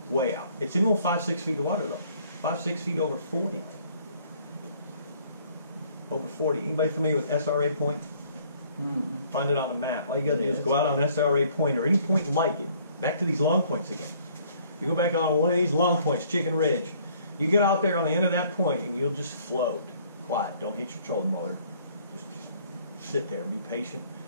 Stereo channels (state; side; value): inverted; both; correlation -0.60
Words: Way out. It's in about 5, 6 feet of water, though. 5, 6 feet over 40. Over 40. Anybody familiar with SRA Point? Mm-hmm. Find it on the map. All you got to do is go out on SRA Point or any point like it. Back to these long points again. You go back on one of these long points, Chicken Ridge. You get out there on the end of that point and you'll just float. Quiet. Don't hit your trolling motor. Just sit there and be patient